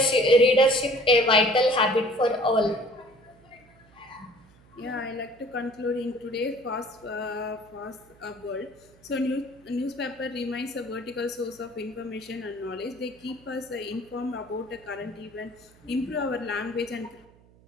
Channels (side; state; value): right; noise; hum, 27 dB below the sound